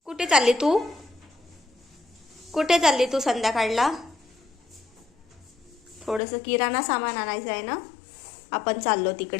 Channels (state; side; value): drops out; right; at 6.2 s